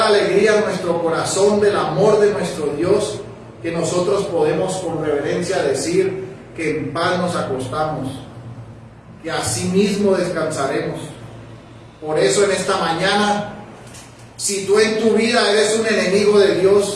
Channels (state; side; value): identical; both; correlation 1.00